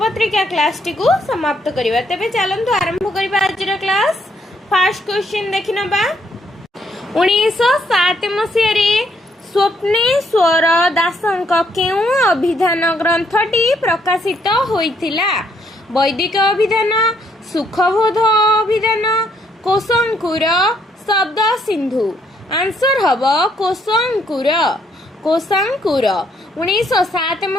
क्लास टी को समाप्त करिबा। तबे चलंतु आरंभ करिबा आजर क्लास। फर्स्ट क्वेश्चन देखिनबा। 1907 मसिया रे स्वप्नेश्वर दासंक केउ अभिधान ग्रंथटी प्रकाशित होइथिला? वैदिक अभिधान, सुखबोध अभिधान, कोशंकुर, शब्द सिंधु। आंसर हबो कोशंकुर। 1907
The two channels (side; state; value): both; normal; correlation 0.70